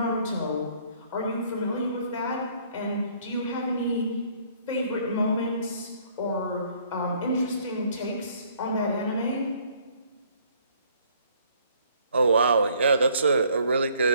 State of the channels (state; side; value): inverted; both; correlation -0.62